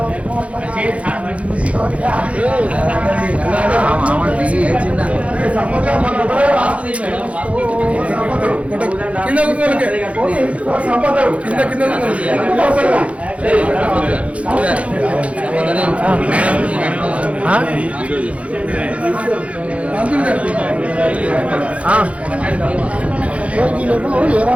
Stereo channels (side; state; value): left; late; 0.063 ms